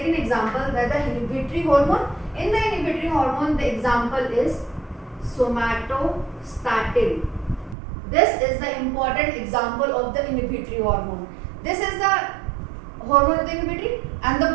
example, that the inhibitory hormone. In the inhibitory hormone, the example is somatostatin. This is the important example of the inhibitory hormone. This is the hormone of the inhibitory, and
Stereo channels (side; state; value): left; drops out; at 7.8 s